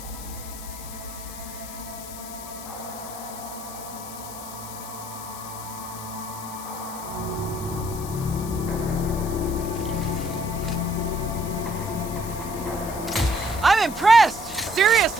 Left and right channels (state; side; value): noise; left; hiss, 12 dB below the sound